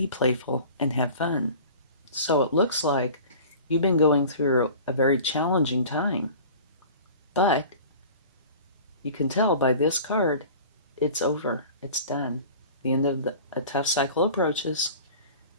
playful and have fun. So it looks like you've been going through a very challenging time. But you can tell by this card, it's over. It's done. The end of a tough cycle approaches.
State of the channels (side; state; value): both; inverted; correlation -0.41